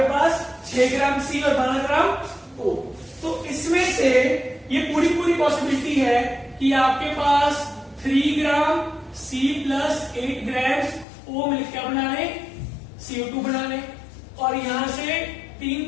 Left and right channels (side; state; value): right; drops out; at 11.1 s